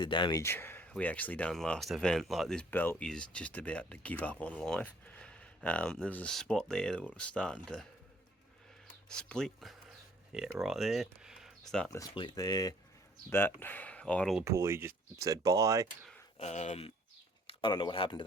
damage we actually done last event. Like, this belt is just about to give up on life. There was a spot there that was starting to split. Yeah, right there. Starting to split there. That idler pulley just said bye. I don't know what happened to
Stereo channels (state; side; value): normal; both; correlation 0.60